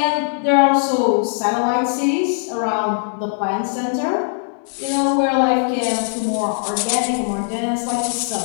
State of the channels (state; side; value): silent; right; 63 dB below the other